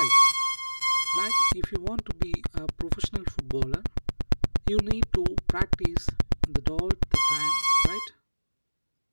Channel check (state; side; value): inverted; both; correlation -1.00